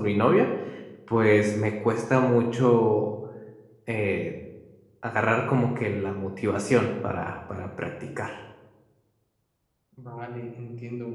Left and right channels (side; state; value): both; identical; correlation 1.00